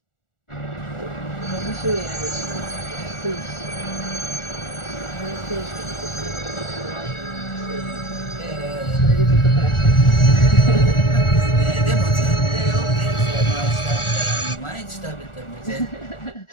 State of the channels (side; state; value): right; late; 1.4 ms